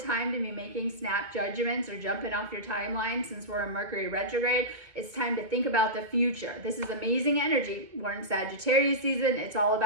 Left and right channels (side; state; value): left; late; 2.2 ms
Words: time to be making snap judgments or jumping off your timeline since we're in Mercury retrograde. It's time to think about the future. This is amazing energy. We're in Sagittarius season. It's all